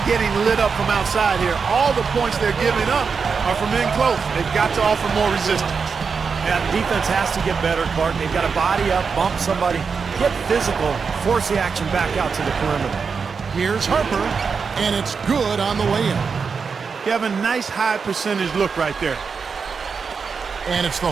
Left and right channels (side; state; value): left; quieter; 5.5 dB